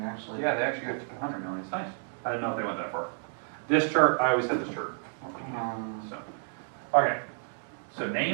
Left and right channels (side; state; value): left; silent; 56 dB below the other